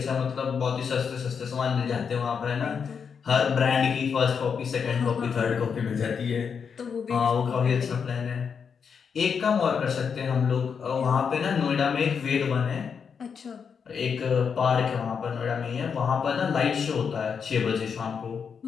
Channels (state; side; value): quieter; right; 6.5 dB